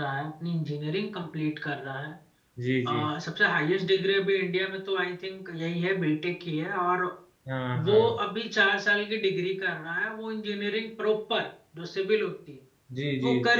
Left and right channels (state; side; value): identical; both; correlation 1.00